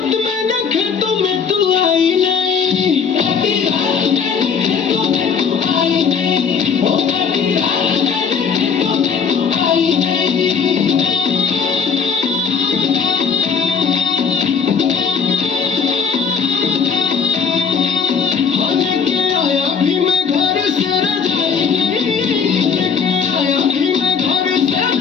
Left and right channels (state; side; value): quieter; right; 6.1 dB